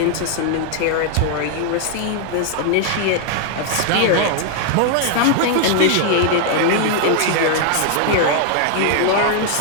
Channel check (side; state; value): both; different; correlation 0.00